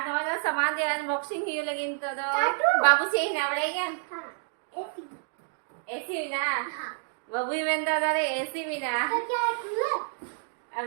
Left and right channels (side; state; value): left; silent; digital silence